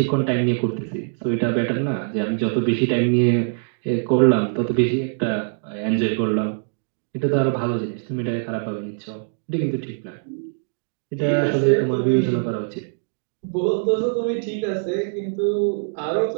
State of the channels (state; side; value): silent; left; digital silence